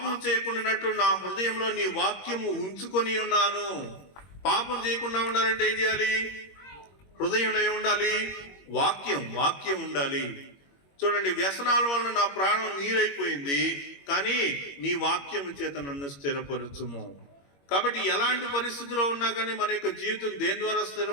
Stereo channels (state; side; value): late; right; 21 ms